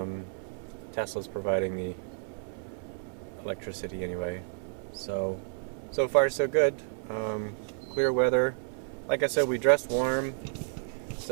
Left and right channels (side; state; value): left; silent; digital silence